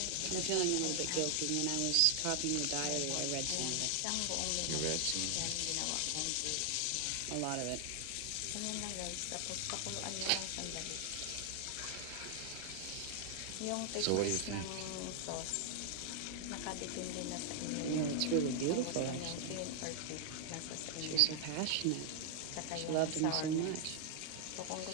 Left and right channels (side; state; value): both; different; correlation 0.00